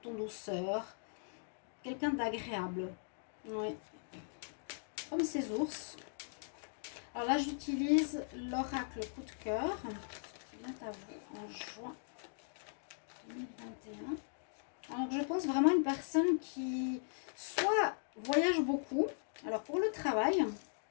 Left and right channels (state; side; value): silent; right; digital silence